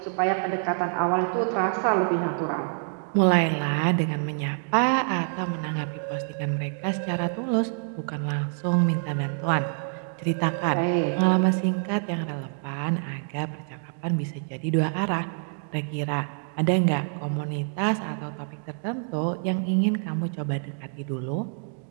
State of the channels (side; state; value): left; silent; 59 dB below the other